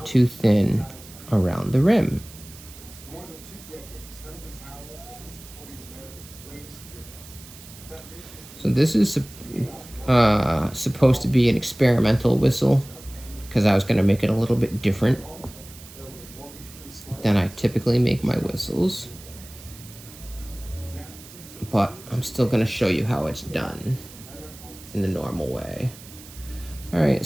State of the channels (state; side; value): noise; right; hiss, 18 dB below the sound